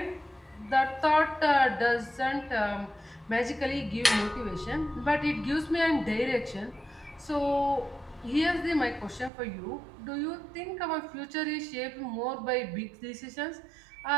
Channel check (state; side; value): drops out; left; at 9.3 s